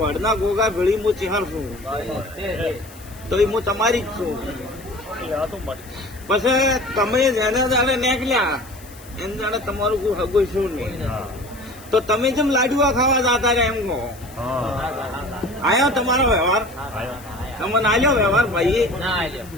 ગોગા ભેળી હું ચેહર છું, તો એ હું તમારી જ છું. પછી તમે જેને જાણે નીકળ્યા એને જાણે તમારું કોઈ હગું શું નહીં, તો તમે જેમ લાડુઆ ખાવા જતા રહ્યા એમ કહો. આયો તમારો વ્યવહાર? તમને આલ્યો વ્યવહાર ભાઈ?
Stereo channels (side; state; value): left; noise; hiss, 21 dB below the sound